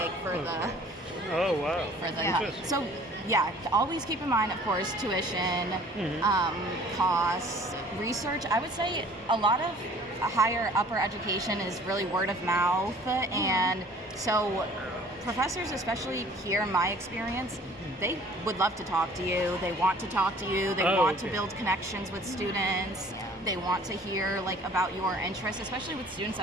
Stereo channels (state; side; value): normal; both; correlation 0.51